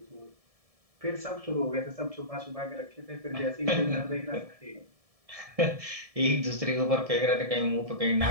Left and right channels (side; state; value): left; late; 1.7 ms